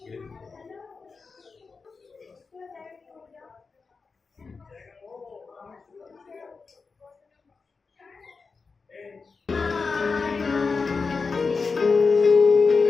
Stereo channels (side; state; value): right; quieter; 4.6 dB